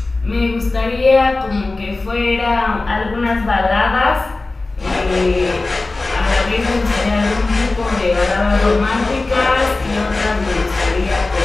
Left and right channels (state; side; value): quieter; right; 3.3 dB